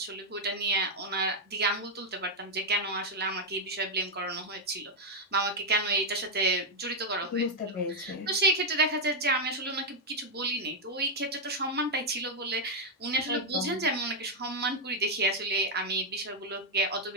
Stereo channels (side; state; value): both; normal; correlation -0.01